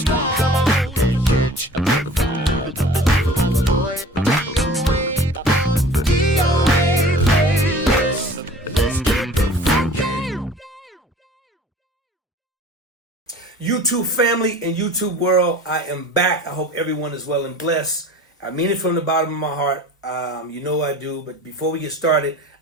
Come on, catch a boy. DOA playlist. Let's get the funky. YouTube family and YouTube world, I am back. I hope everyone is well and blessed. I mean it from the bottom of my heart. You know I do. But before we get started,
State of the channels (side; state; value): both; normal; correlation 0.44